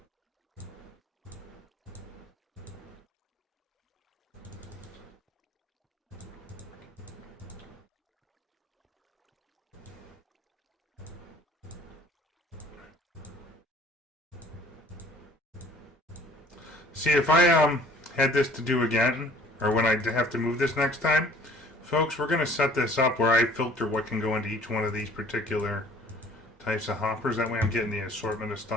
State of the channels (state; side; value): normal; both; correlation 0.53